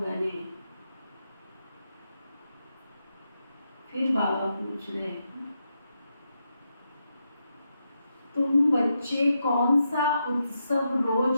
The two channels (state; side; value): inverted; both; correlation -0.84